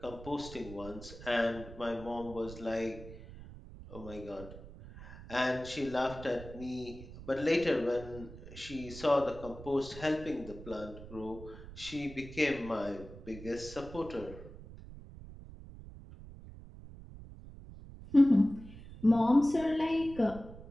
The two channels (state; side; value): noise; right; rumble, 15 dB below the sound